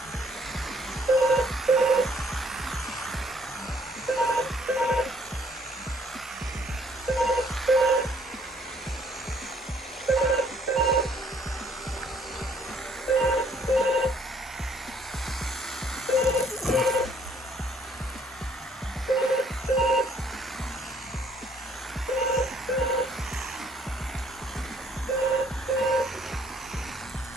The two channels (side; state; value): both; normal; correlation 0.63